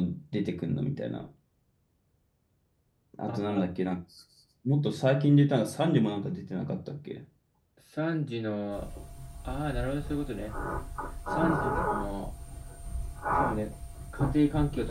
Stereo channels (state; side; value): identical; both; correlation 1.00